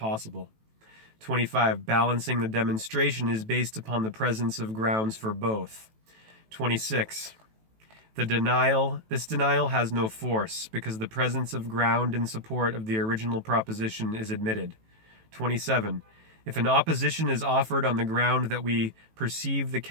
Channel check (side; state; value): left; late; 18 ms